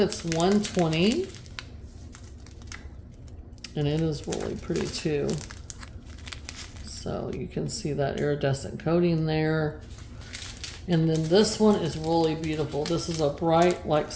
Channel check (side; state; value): both; identical; correlation 1.00